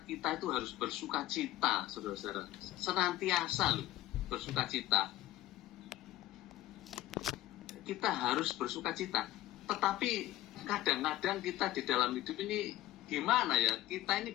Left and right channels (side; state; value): right; quieter; 15.7 dB